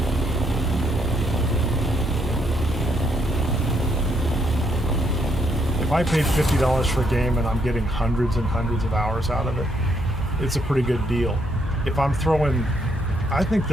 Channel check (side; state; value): both; normal; correlation 0.73